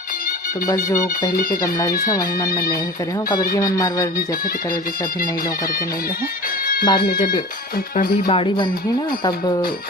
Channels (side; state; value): both; normal; correlation 0.37